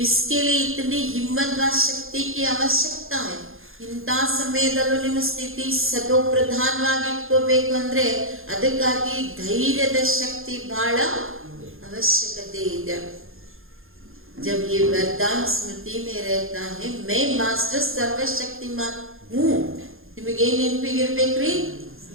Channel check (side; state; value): left; late; 0.60 ms